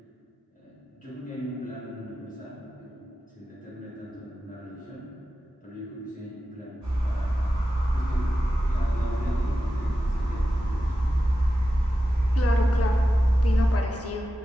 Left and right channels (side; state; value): both; normal; correlation 0.92